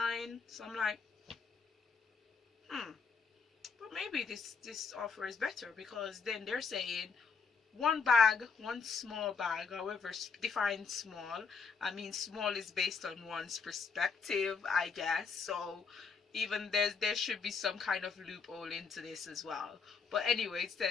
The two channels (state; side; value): quieter; right; 5.3 dB